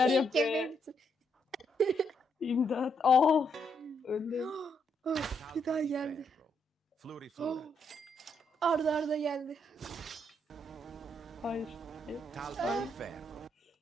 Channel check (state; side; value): normal; both; correlation 0.76